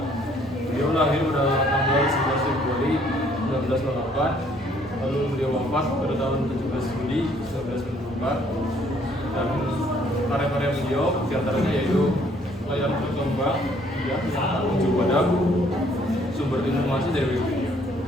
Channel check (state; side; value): normal; both; correlation 0.63